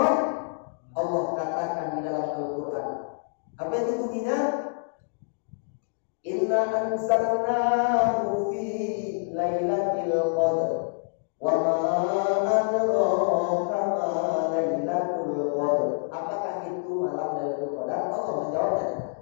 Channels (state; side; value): silent; right; digital silence